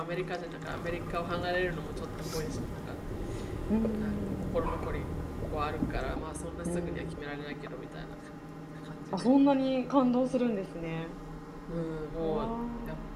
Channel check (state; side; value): identical; both; correlation 1.00